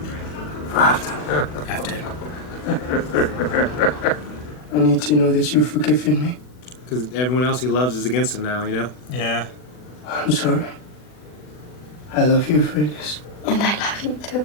After. I need to know that you've forgiven me. Because everyone else he loves is against him now, you know? Yeah. I'm sorry. I love you, Freydis. And I love you too.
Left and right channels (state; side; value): late; right; 40 ms